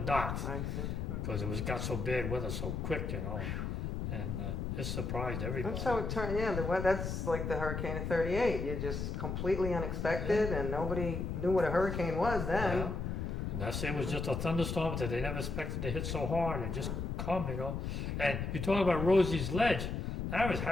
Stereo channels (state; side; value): noise; left; rumble, 3 dB below the sound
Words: I see. because got so bad weather so quick, and it surprised everybody. That's how it turned. Yeah, that's like the hurricane of '38. You just completely unexpected, and nobody knew what a hurricane was then. Yeah. And that's it was just a thunderstorm that they never expected to hit so hard and just come, And you talk about Rosie's Ledge, that was